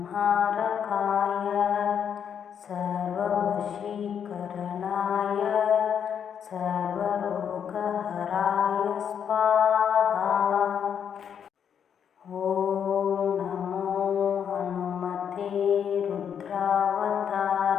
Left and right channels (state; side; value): quieter; right; 8.1 dB